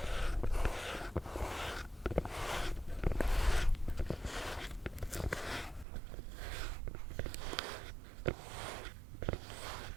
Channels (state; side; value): drops out; left; at 5.9 s